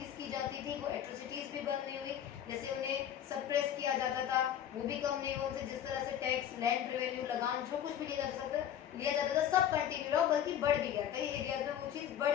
की जाती थी वो एट्रोसिटीज़ भी बंद नहीं हुई. जैसे उन्हें सप्रेस किया जाता था वो भी कम नहीं हुआ. उनसे जिस तरह से टैक्स, लैंड रेवेन्यू, लगान जो कुछ भी लिया जाता था सब कंटिन्यू रहा, बल्कि बढ़ भी गया. कई एरियाज में वो चीज़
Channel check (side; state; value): right; quieter; 10.0 dB